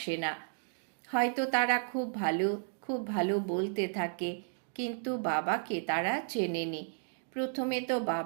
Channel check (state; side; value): silent; left; digital silence